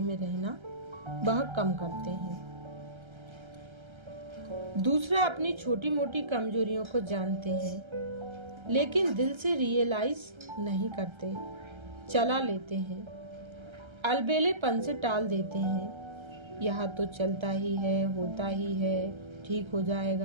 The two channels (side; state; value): left; late; 1.3 ms